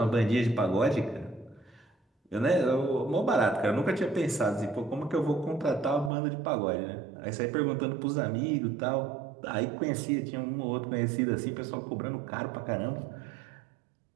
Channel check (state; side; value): drops out; left; at 6.1 s